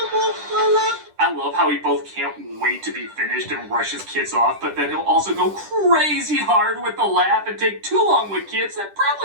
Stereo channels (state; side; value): late; left; 10 ms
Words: wolf, fella. I love how he both can't wait to be finished and rush his kids off, but then he'll also go crazy hard with the laugh and take too long with kids that